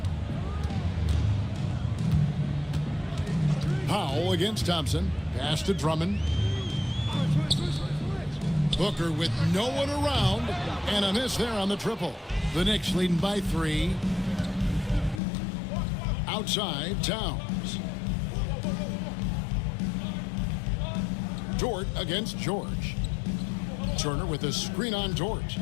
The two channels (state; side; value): drops out; right; at 15.2 s